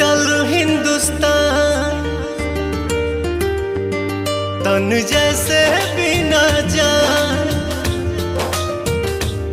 हिंदुस्तान तन जैसे बिना जान।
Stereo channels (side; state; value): both; identical; correlation 1.00